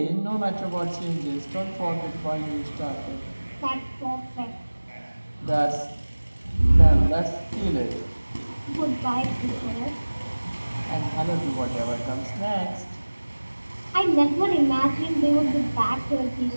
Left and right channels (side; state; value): both; inverted; correlation -1.00